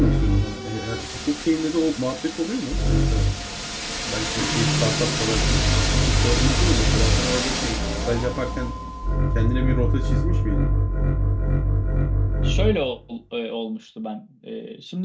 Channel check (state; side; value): identical; both; correlation 1.00